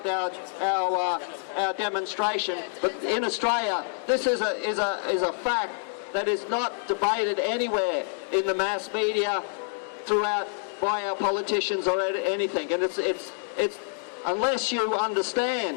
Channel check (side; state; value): right; silent; 60 dB below the other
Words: our demonstration, but in Australia this is a fact that is not debated anywhere in the mass media throughout by our politicians or anything. And it's unless you